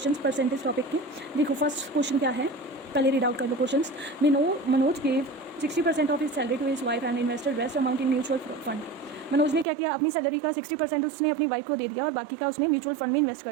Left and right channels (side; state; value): left; drops out; at 9.7 s